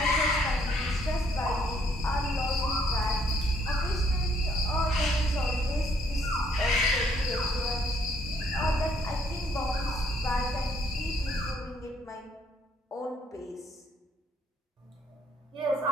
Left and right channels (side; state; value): both; normal; correlation 0.67